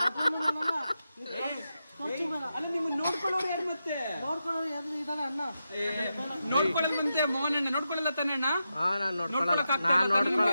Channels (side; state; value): both; inverted; correlation -0.88